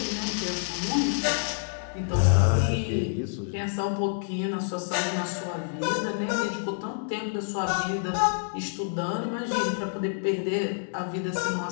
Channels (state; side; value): silent; right; digital silence